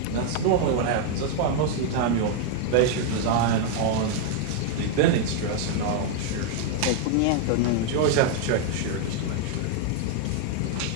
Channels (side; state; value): both; different; correlation 0.00